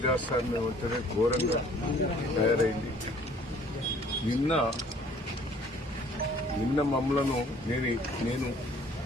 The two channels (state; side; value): normal; both; correlation 0.55